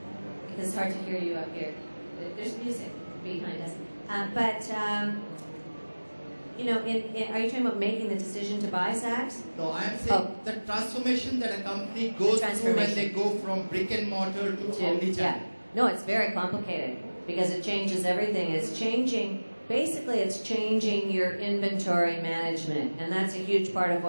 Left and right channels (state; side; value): inverted; both; correlation -1.00